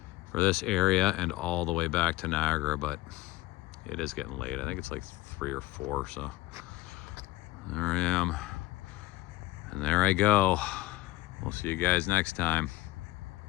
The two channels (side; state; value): right; quieter; 17.7 dB